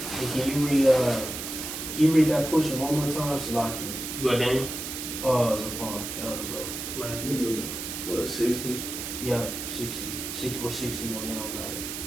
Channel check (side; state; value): right; noise; hiss, 6 dB below the sound